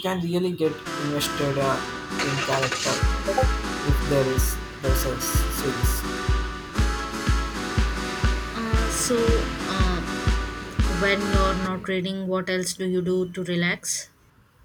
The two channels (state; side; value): identical; both; correlation 1.00